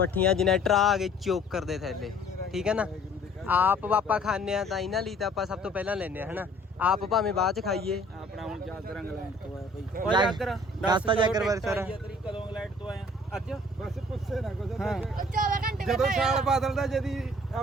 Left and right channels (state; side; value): normal; both; correlation 0.54